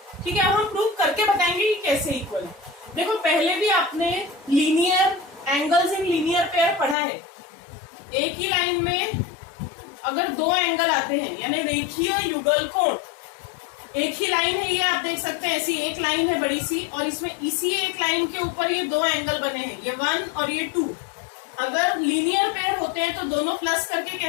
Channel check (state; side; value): drops out; right; at 7.0 s